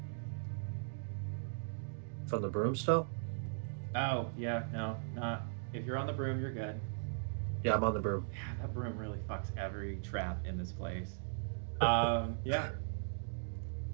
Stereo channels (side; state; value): left; silent; digital silence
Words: From the broom still? Oh yeah, no, not. If you're on the broom, you're good. Yeah, I'm on the broom. Yeah, that broom really fucks every trap in this place. Yeah.